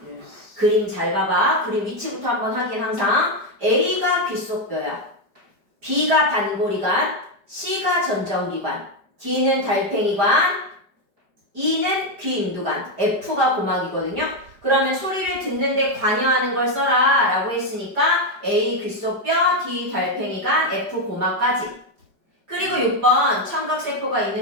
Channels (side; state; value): left; late; 5.0 ms